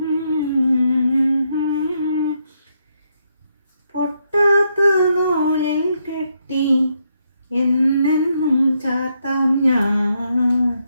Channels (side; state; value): both; inverted; correlation -0.78